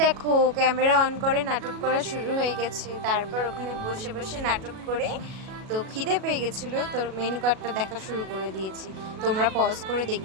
দেখো ক্যামেরা অন করে নাটক করা শুরু হয়ে গেছে। তারপর ওখানে বসে বসে নাটক করে তো খিদে পেয়ে গেছিলো, তো মেনু কার্ডটা দেখা শুরু করে দিয়েছি। তোমরা পজ করে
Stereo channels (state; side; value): late; left; 37 ms